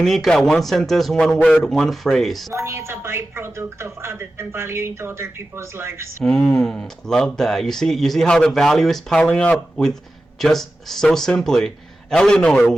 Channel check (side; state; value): both; normal; correlation 0.94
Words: one sentence, one word, one phrase. Money is a byproduct of adding value into other people's lives. Love that. You see how the value is piling up with just so simply. Eleanor,